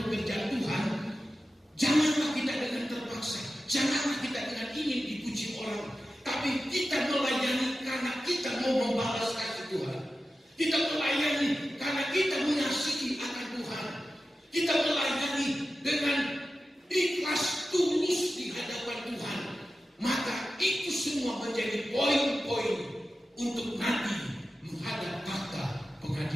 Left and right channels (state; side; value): normal; both; correlation 0.93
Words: pekerjaan Tuhan, janganlah kita dengan terpaksa, janganlah kita dengan ingin dipuji orang, tapi kita melayani karena kita mau membalas kasih Tuhan. Kita melayani karena kita mengasihi akan Tuhan. Kita melayani dengan ikhlas tulus di hadapan Tuhan. Maka itu semua menjadi poin-poin untuk nanti menghadap tahta